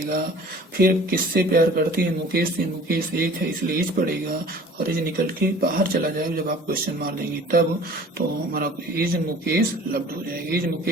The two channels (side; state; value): both; normal; correlation 0.47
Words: फिर किससे प्यार करती है, मुकेश से, मुकेश एक है इसलिए इज पड़ेगा, और इज निकल के बाहर चला जाएगा जब आप क्वेश्चन मार देंगे तब। तो हमारा इज मुकेश लव्ड हो जाएगा, इज